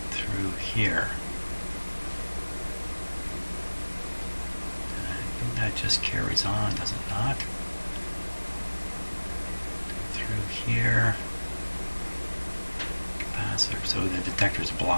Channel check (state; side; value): inverted; both; correlation -1.00